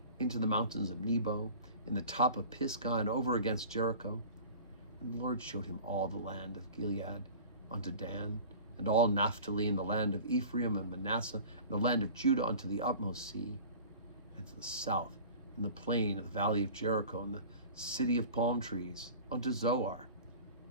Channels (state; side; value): inverted; both; correlation -0.41